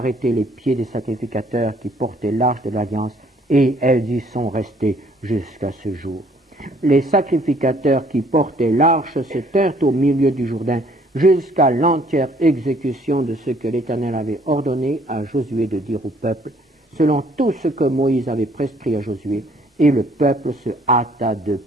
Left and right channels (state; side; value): normal; both; correlation 0.61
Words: les pieds des sacrificateurs qui portaient l'arche de l'Alliance, et elles y sont restées jusqu'à ce jour. Les sacrificateurs qui portaient l'arche se tinrent au milieu du Jourdain jusqu'à l'entière exécution de ce que l'Éternel avait ordonné à Josué de dire au peuple, selon tout ce que Moïse avait prescrit à Josué, et le peuple se hâta de